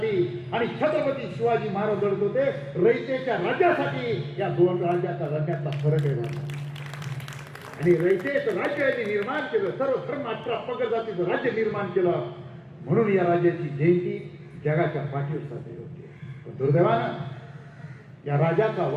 आणि छत्रपती शिवाजी महाराज लढत होते रयतेच्या राज्यासाठी. या दोन राज्यातला फरक आहे. आणि रयतेचं राज्य यांनी निर्माण केलं, सर्व धर्म 18 पगड जातीचं राज्य निर्माण केलं. म्हणून या राज्याची जयंती जगाच्या पाठीवर साजरी होते. पण दुर्दैवानं या राजाचा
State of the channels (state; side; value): identical; both; correlation 1.00